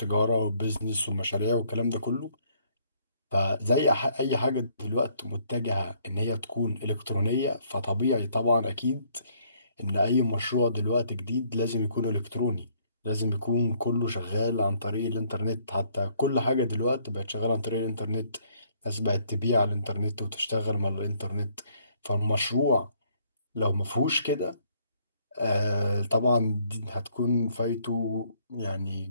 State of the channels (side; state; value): both; inverted; correlation -0.66